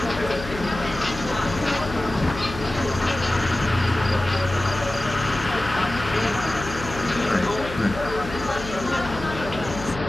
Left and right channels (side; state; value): left; noise; hum, 11 dB below the sound